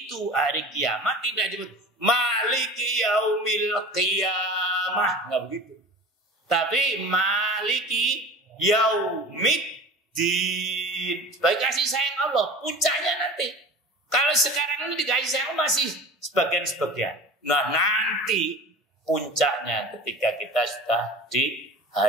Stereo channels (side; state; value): both; normal; correlation 0.37